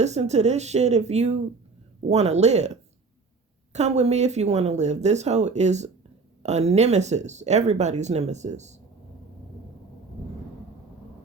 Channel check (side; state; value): left; quieter; 4.3 dB